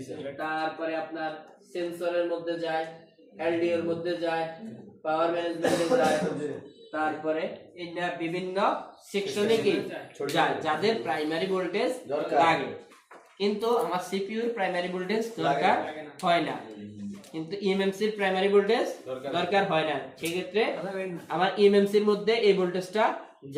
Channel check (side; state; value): both; identical; correlation 1.00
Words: তারপরে আপনার সেন্সরের মধ্যে যায়, এলডিও এর মধ্যে যায়, পাওয়ার ম্যানেজমেন্টে যায়, তারপরে এটা বিভিন্ন সেকশনে কি যায় যাদের প্রাইমারি ভোল্টেজ লাগে। কিন্তু আমার সিপিইউর প্রাইমারি ভোল্টেজ দরকার হয় না, কিন্তু ইএমএমসির প্রাইমারি ভোল্টেজ দরকার হয় না। সেই ক্ষেত্রে আমার ইএমএমসির মধ্যে এই ভোল্টেজটা